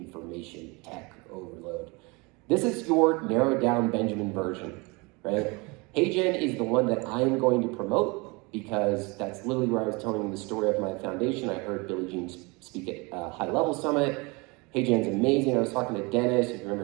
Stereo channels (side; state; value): left; quieter; 27.3 dB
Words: tech overload. This is your narrowed down Benjamin version, right? HeyGen is the one that I am going to promote because that's literally where I was telling the story of my foundation. I heard Billie Jean speak at a high level summit. HeyGen's amazing. I was talking to Dennis, if you